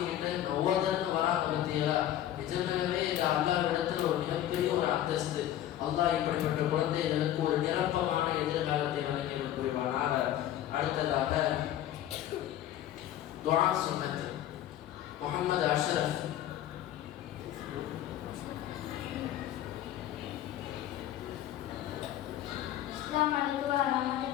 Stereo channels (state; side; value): quieter; right; 12.2 dB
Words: ஓதன்னு வராங்க பத்தியா. நிஜமாகவே இந்த அல்லாஹ்விடத்தில் ஒரு மிகப்பெரிய ஒரு அந்தஸ்து. அல்லாஹ் இப்படிப்பட்ட குழந்தைகளுக்கு ஒரு நிரப்பமான எதிர்காலத்தை வழங்கி புரிவானாக. அடுத்ததாக துஆ சுன்னத் Muhammad Ashraf. Assalamualaikum